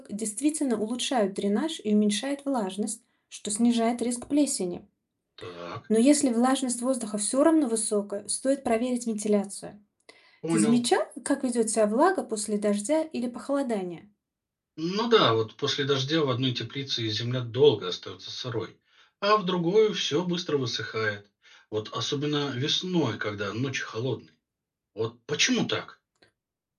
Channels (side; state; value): both; identical; correlation 1.00